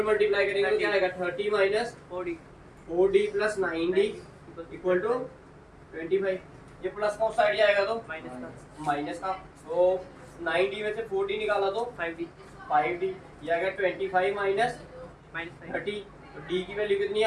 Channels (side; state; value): both; identical; correlation 1.00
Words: मल्टीप्लाई करेंगे तो क्या आएगा 30 minus 4D plus 9D equal to 25। ये प्लस का उस साइड जाएगा तो माइनस का। तो 9D में से 4D निकाला तो 5D 5D, ये आ गया 25 माइनस -5 30, तो D की वैल्यू कितनी